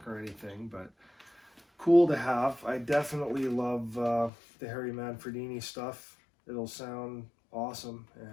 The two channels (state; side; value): drops out; right; at 4.3 s